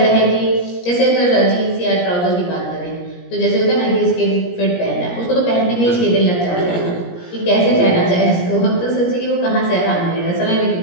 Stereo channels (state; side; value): late; right; 17 ms